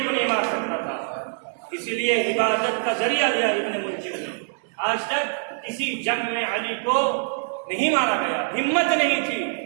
کو نہیں مار سکتا تھا، اسی لیے عبادت کا ذریعہ لیا ابن ملجم نے۔ آج تک کسی جنگ میں علی کو نہیں مارا گیا، ہمت نہیں تھی۔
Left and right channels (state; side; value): silent; left; 62 dB below the other